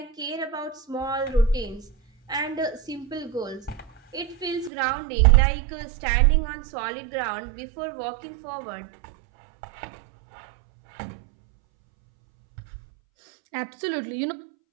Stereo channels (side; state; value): left; drops out; at 4.7 s